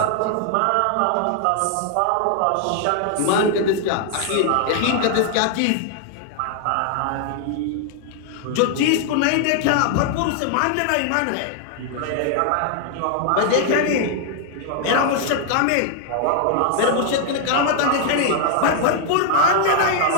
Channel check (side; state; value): both; different; correlation 0.00